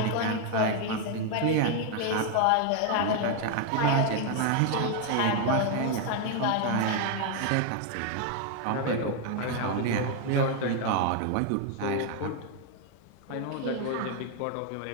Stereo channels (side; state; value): both; different; correlation 0.01